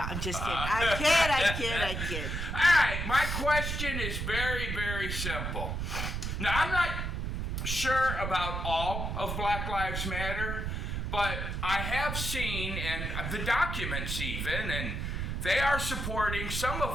just kidding. I kid. All right, my question is very, very simple. Now, I'm not sure about all of Black Lives Matter, but I have seen, and the documents even, and they are supporting some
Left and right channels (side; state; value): right; noise; rumble, 3 dB below the sound